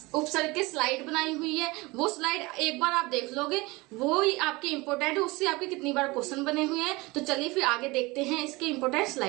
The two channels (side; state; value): left; quieter; 23.1 dB